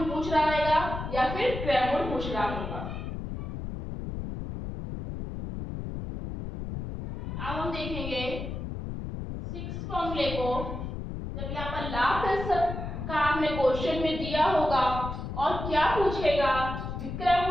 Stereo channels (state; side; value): noise; left; rumble, 6 dB below the sound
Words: पूछ रहा रहेगा या फिर क्रय मूल्य पूछ रहा होगा। अब हम देखेंगे सिक्स फॉर्मूले को। जब यहाँ पर लाभ प्रतिशत का हमने क्वेश्चन में दिया होगा और क्या पूछेगा, विक्रय